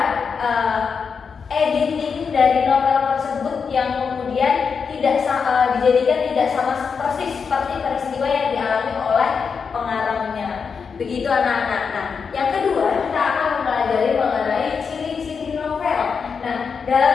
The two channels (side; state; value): right; quieter; 5.8 dB